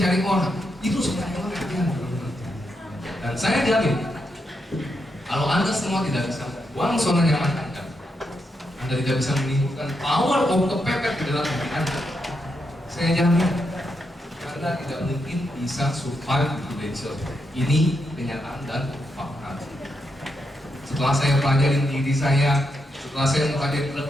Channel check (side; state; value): both; normal; correlation 0.82